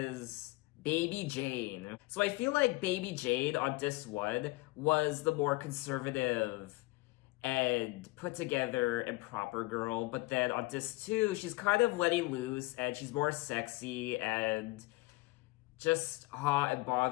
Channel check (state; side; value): quieter; right; 22.1 dB